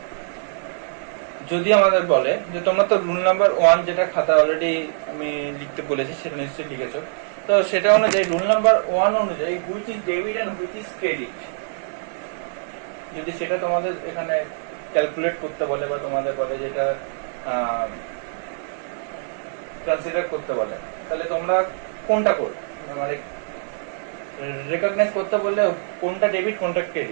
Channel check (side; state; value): left; silent; digital silence